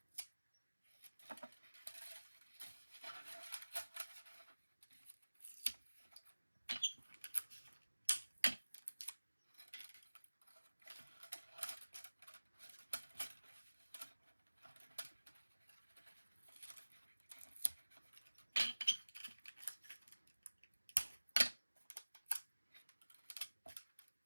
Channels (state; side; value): inverted; both; correlation -1.00